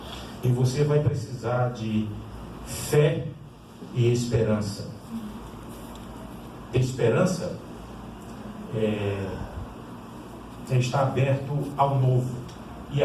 e você vai precisar de fé e esperança. Ter esperança é estar aberto ao novo e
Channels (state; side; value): identical; both; correlation 1.00